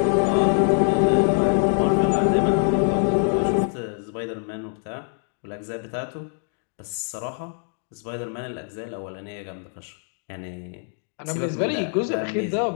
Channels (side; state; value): right; silent; 55 dB below the other